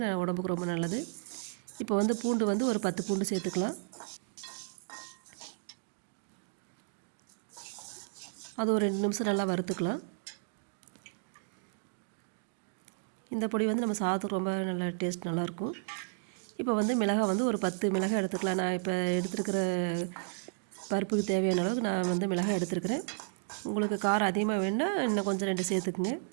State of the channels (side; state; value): left; silent; digital silence